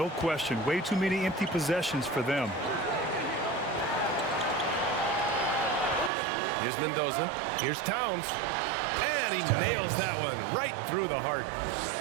question. Way too many empty possessions for them. Here's Mendoza. Here's Towns. And he nails that one right through the heart.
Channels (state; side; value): drops out; left; at 6.1 s